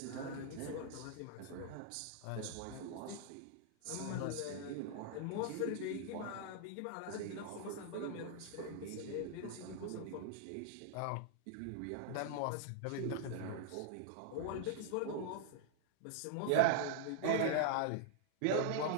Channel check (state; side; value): different; both; correlation 0.00